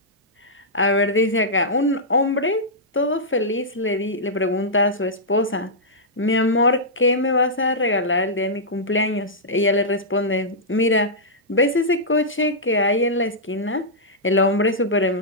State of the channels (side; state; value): both; normal; correlation -0.11